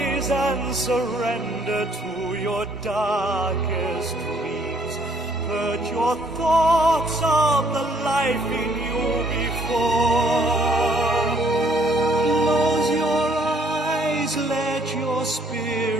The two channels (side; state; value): both; normal; correlation 0.64